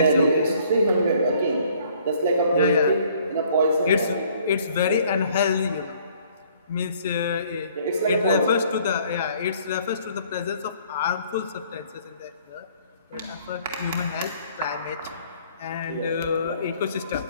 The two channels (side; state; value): both; inverted; correlation -0.60